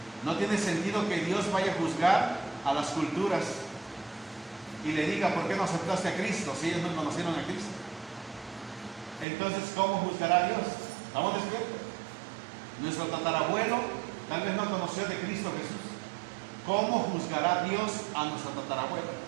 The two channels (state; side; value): drops out; left; at 9.2 s